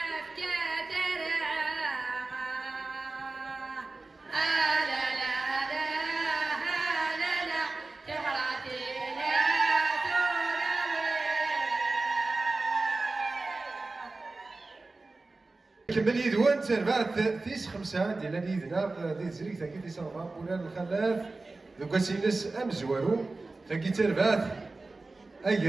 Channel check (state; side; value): quieter; left; 3.4 dB